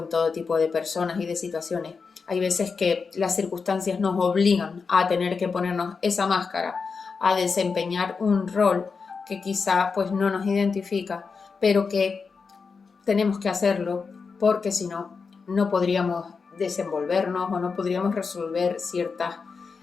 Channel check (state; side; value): quieter; right; 5.1 dB